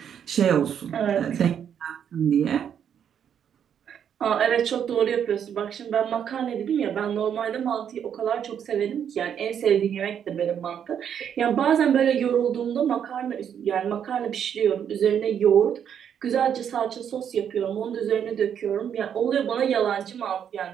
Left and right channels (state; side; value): quieter; left; 8.5 dB